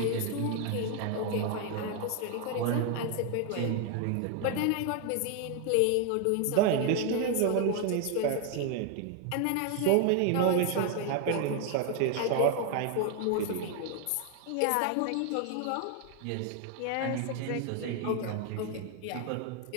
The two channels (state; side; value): different; both; correlation 0.01